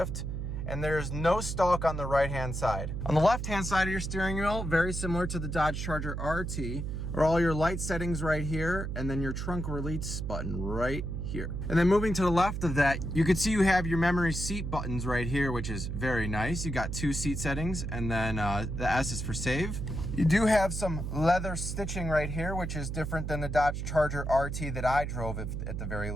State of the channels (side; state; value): right; noise; hum, 4 dB below the sound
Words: And there's no stalk on the right-hand side. On the left-hand side of your steering wheel, very similar to the Dodge Charger RT, are all your light settings right here, and then your trunk release button right here. And then moving to the left of that, you can see you have your memory seat buttons right here, which is very nice. You got two seat settings, and then the S is for save. You do have some leather stitching right here, which is different than the Dodge Charger RT that I drove at the very